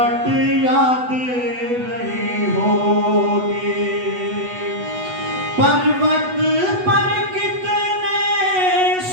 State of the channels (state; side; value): late; left; 8.1 ms